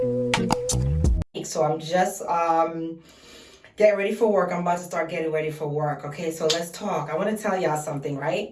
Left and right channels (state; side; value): identical; both; correlation 1.00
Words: So I'm just getting ready for work. I'm about to start getting ready for work. Okay, so let's talk. I want to tell y'all something,